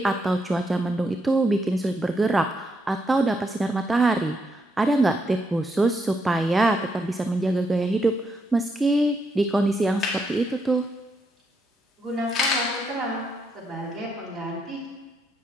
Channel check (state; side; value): normal; both; correlation 0.79